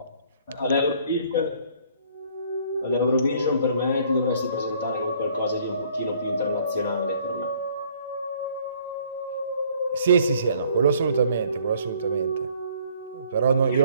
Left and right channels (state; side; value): inverted; both; correlation -0.60